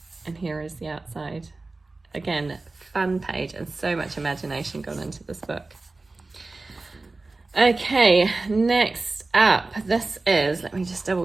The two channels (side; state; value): left; quieter; 3.4 dB